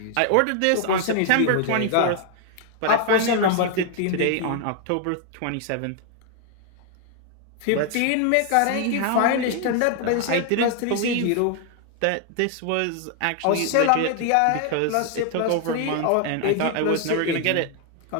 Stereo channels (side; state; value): both; different; correlation 0.00